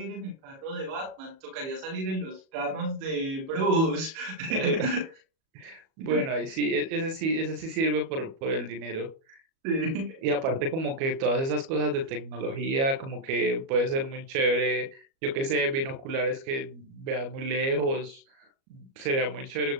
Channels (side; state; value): left; late; 37 ms